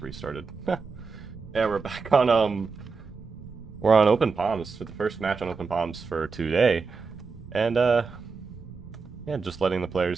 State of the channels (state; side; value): quieter; left; 4.8 dB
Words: restarted. Yeah, we're back on, we're on Open Palms for the first match on Open Palms for today. And, yeah, just letting the